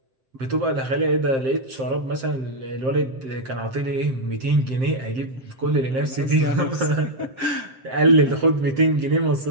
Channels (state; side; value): late; left; 7.6 ms